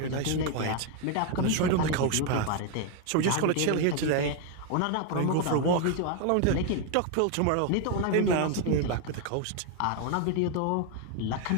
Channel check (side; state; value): both; different; correlation 0.01